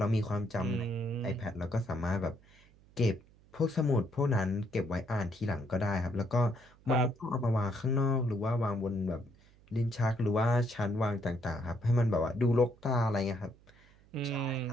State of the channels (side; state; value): right; noise; hum, 27 dB below the sound